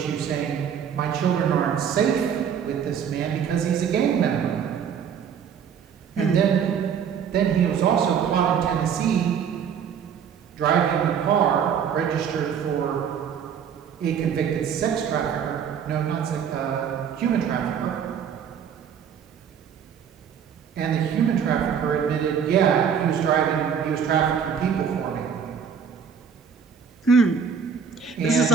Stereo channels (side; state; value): left; quieter; 7.4 dB